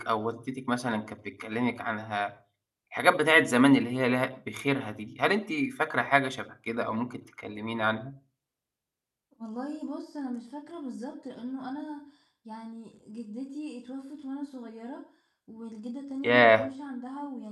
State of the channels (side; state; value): both; identical; correlation 1.00